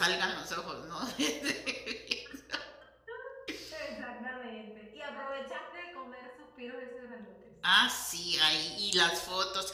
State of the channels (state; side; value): identical; both; correlation 1.00